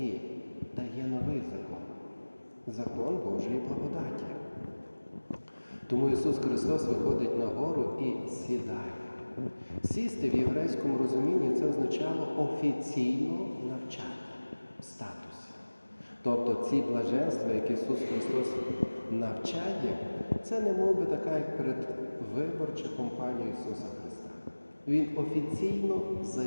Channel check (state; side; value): inverted; both; correlation -1.00